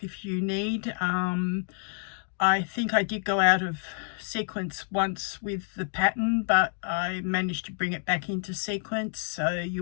if you need. I think I did go out of sequence once with the pattern, but I managed to bring it back into sequence, so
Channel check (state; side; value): silent; right; 59 dB below the other